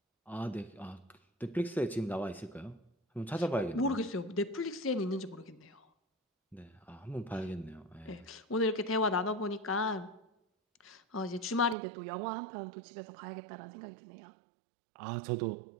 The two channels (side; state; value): left; drops out; at 11.8 s